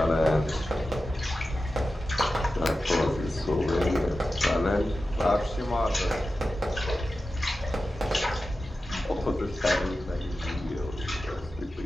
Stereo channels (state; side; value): normal; both; correlation 0.93